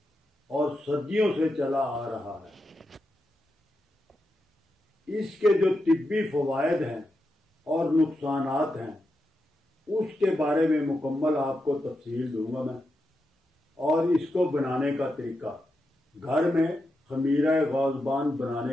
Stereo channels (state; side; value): normal; both; correlation 0.87